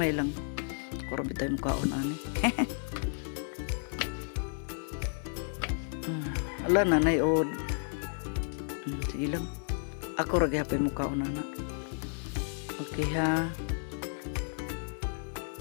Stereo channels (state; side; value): silent; right; 56 dB below the other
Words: lang. Kuro bitay mo kaon ani. Ala nanay od. Sige lang. Ako ra gyapon mo kaon na. Okay ha.